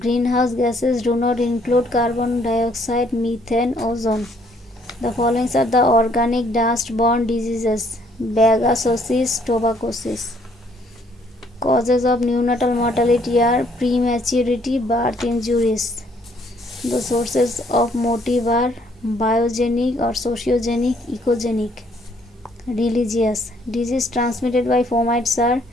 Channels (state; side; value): normal; both; correlation 0.66